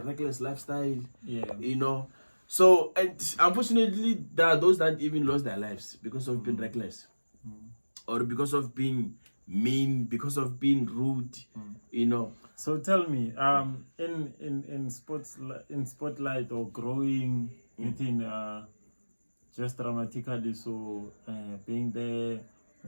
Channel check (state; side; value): inverted; both; correlation -1.00